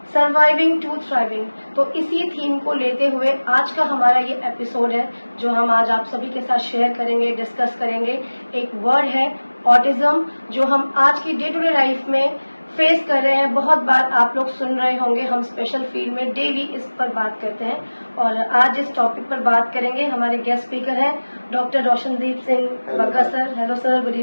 surviving to thriving. तो इसी थीम को लेते हुए आज का हमारा ये एपिसोड है, जो हम आज आप सभी के साथ शेयर करेंगे, डिस्कस करेंगे। एक वर्ड है ऑटिज्म, जो हम आज की डे टू डे लाइफ में फेस कर रहे हैं। बहुत बार आप लोग सुन रहे होंगे, हम स्पेशल फील्ड में डेली इस पर बात करते हैं और आज इस टॉपिक पर बात करेंगे। हमारे गेस्ट स्पीकर हैं doctor Roshandeep Singh Bagga sir. Hello sir, good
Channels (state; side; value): inverted; both; correlation -1.00